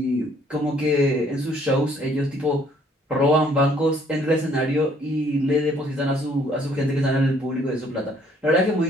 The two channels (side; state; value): both; normal; correlation 0.62